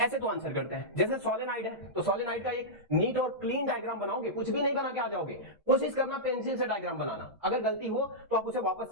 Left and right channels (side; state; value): both; normal; correlation -0.11